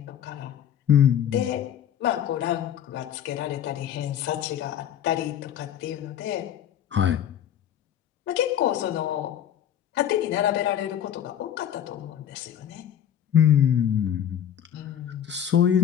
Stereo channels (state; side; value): quieter; right; 9.9 dB